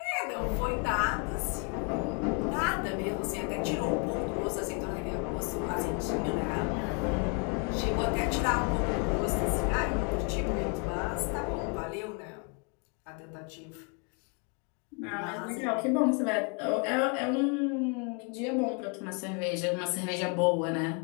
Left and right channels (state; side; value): quieter; right; 34.5 dB